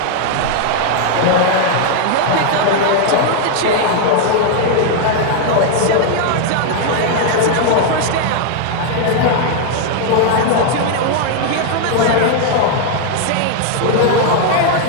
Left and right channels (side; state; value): both; different; correlation 0.00